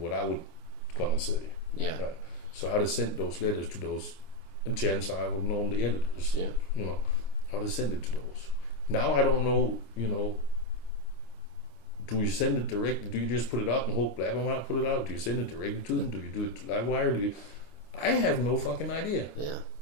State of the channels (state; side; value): late; right; 26 ms